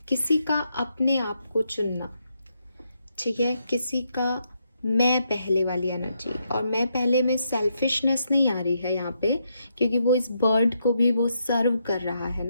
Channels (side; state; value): both; inverted; correlation -0.79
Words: किसी का अपने आप को चुनना, ठीक है, किसी का मैं पहले वाली एनर्जी। और मैं पहले में सेल्फिशनेस नहीं आ रही है यहाँ पे, क्योंकि वो इस बर्ड को भी वो सर्व कर रहा है